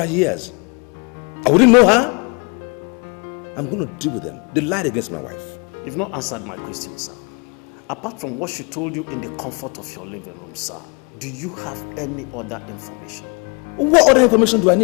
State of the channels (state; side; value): quieter; right; 32.1 dB